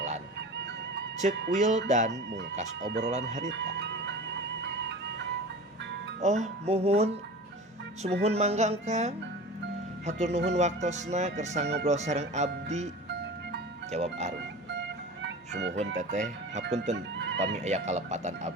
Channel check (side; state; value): both; normal; correlation 0.35